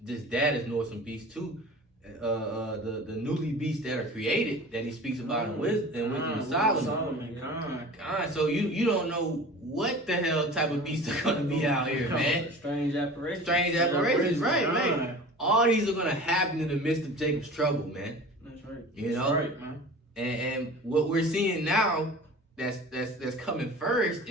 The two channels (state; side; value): normal; both; correlation 0.39